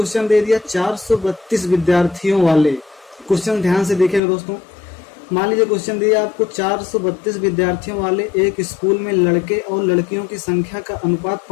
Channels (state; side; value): drops out; right; at 4.2 s